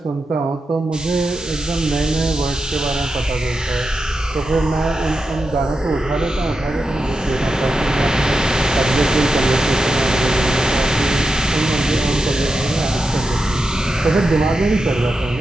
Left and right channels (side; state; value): both; normal; correlation 0.88